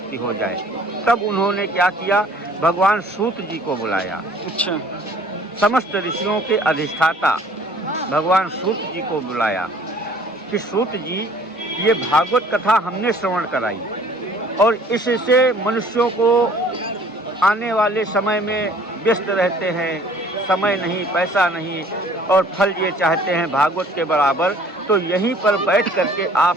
हो जाए। तब उन्होंने क्या किया, भगवान सूत जी को बुलाया। अच्छा। समस्त ऋषियों के अधिष्ठाता भगवान सूत जी को बुलाया कि सूत जी, ये भागवत कथा हमने श्रवण कराई और इससे मनुष्यों को आने वाले समय में व्यस्त रहते हैं, समय नहीं, पैसा नहीं और फल ये चाहते हैं भागवत के बराबर, तो यहीं पर बैठ करके आप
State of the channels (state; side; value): normal; both; correlation 0.54